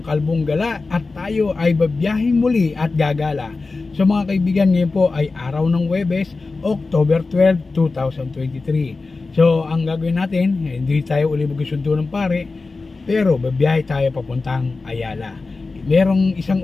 Kalbong Gala at tayo ay babiyahing muli at gagala. So mga kaibigan, ngayon po ay araw ng Huwebes, October 12, 2023. So ang gagawin natin, hindi tayo uli magsundo ng pare, pero babiyahe tayo papuntang Ayala. Merong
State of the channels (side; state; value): right; quieter; 3.8 dB